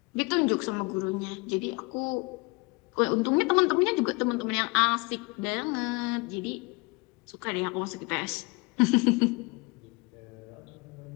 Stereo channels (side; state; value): right; quieter; 27.3 dB